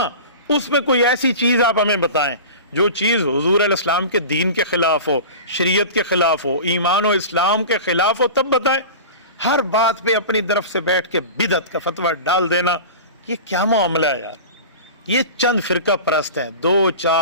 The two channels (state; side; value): inverted; both; correlation -0.34